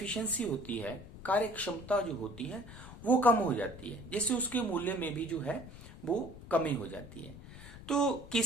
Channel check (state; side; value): noise; left; rumble, 15 dB below the sound